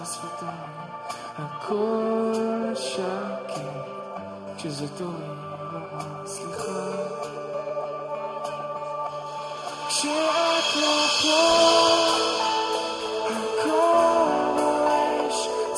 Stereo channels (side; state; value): both; identical; correlation 1.00